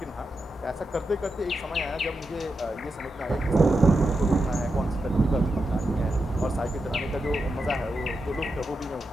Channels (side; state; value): both; normal; correlation 0.87